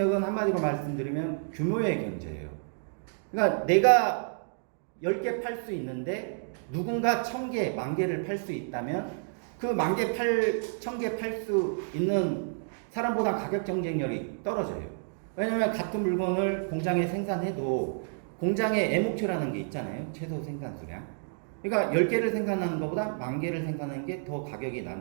한마디로 말씀드리면 규모의 경제예요. 그러니까 내가 10개 팔 수 있는데 누군가 1000개, 10,000개를 팔 수 있다면 그 10,000개, 1000개 팔 수 있는 사람보다 가격 경쟁력이 떨어져요. 왜냐면 같은 물건을 공장에 생산해도 공장의 애목표라는 게 있잖아요. 최소 생산 수량. 그러니까 10개를 생산하는 것보다 10,000개를 생산하는 게 더 가격이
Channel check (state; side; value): silent; left; digital silence